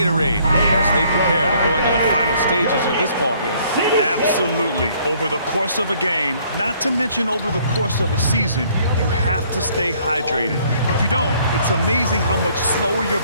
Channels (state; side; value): inverted; both; correlation -0.62